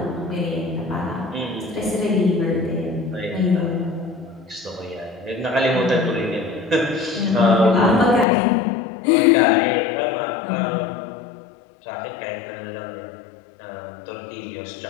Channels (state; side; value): drops out; right; at 8.2 s